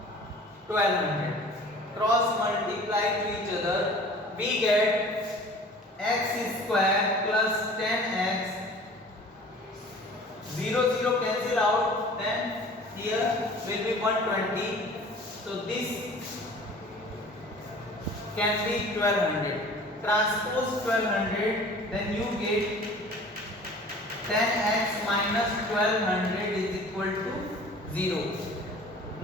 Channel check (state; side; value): normal; both; correlation 0.45